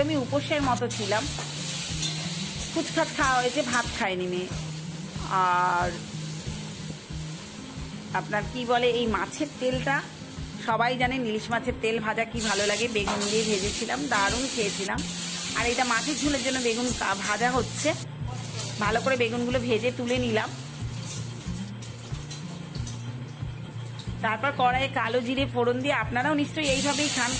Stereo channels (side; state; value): both; identical; correlation 1.00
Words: উপোসের মতো ছিলাম, ফুচখাচ খাওয়া হয়েছে, ভাত খায়নি মেয়ে। আর আপনার কি বলে, এই মাছের তেলটা সবাই জানেন, ইলিশ মাছের তেল ভাজা কি ভালো লাগে। বেগুন দিয়ে ভেজেছিলাম, দারুণ খেয়েছিলাম। আর এটা মাছের ঝোলের জন্য বেগুন ভাজা হচ্ছে। ভালো করে বেগুনগুলো ভেজে তুলে নিলাম। তারপর কড়াইয়ে কালো জিরে ফোড়ন দিয়ে, আপনারাও নিশ্চয়ই এইভাবেই খান,